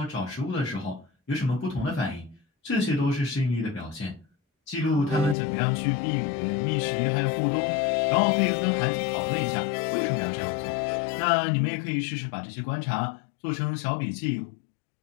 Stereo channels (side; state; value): right; drops out; at 5.4 s